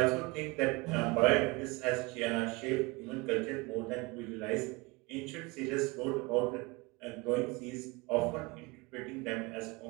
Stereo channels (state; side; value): quieter; left; 25.3 dB